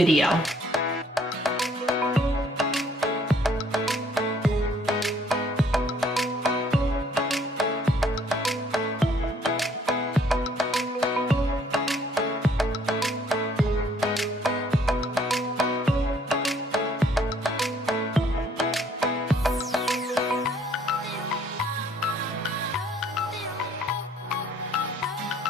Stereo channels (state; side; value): normal; both; correlation 0.62